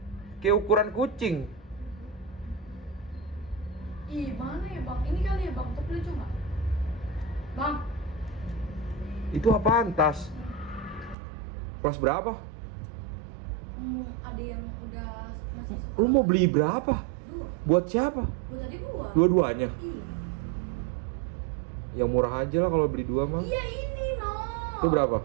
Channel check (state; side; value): drops out; left; at 11.2 s